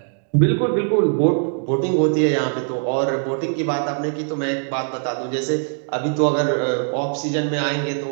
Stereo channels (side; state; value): left; silent; 65 dB below the other